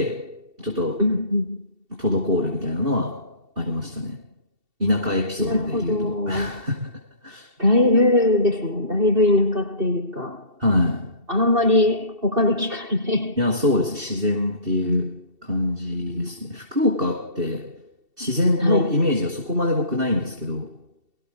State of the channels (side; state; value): left; late; 2.7 ms